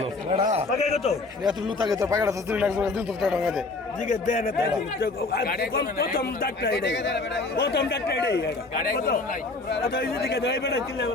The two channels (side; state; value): right; quieter; 3.5 dB